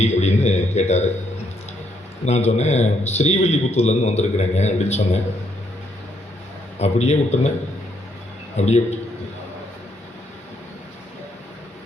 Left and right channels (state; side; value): normal; both; correlation 0.73